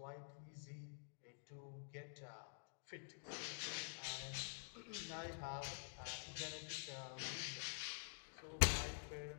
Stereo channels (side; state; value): right; silent; digital silence